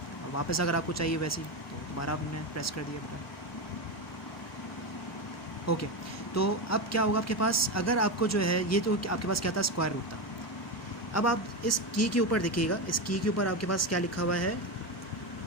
और वापस अगर आपको चाहिए वैसे ही, तो दोबारा आपने प्रेस कर दिया बटन। ओके, तो अब क्या होगा आपके पास, अगर आपको जो है ये तो आपके पास क्या था, स्क्वायर रूट था। अब आप इस की के ऊपर देखिएगा, इस की के ऊपर आपके पास क्या लिखा हुआ है,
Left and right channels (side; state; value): both; normal; correlation 0.15